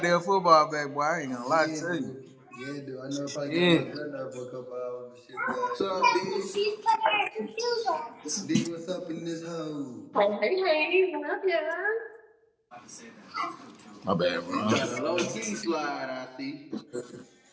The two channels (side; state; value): both; identical; correlation 1.00